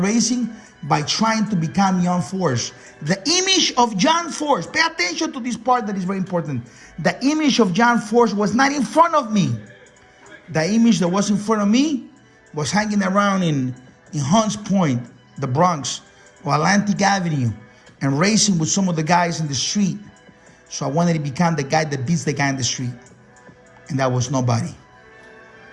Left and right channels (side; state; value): both; identical; correlation 1.00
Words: by trying to become John Force. The image of John Force, pay attention to this part that is very important. The image of John Force was not in front of me. The image that was in front of me was hanging around in Hunts Point, the Bronx, or Atlantic Avenue, and racing with some of the guys in the street. So I wanted to become the guy that beats the guy in the street. And that was nobody.